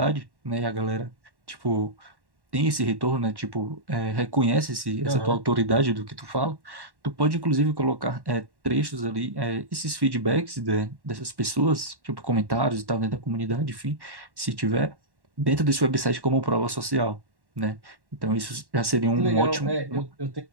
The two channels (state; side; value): late; left; 1.1 ms